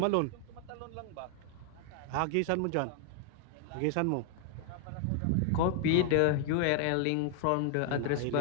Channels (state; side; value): different; both; correlation 0.00